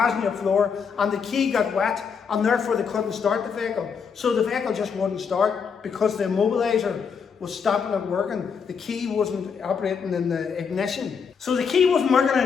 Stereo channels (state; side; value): quieter; right; 6.3 dB